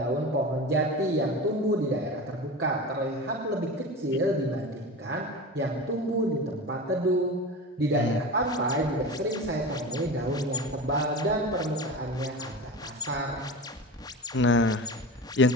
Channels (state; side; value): normal; both; correlation 0.29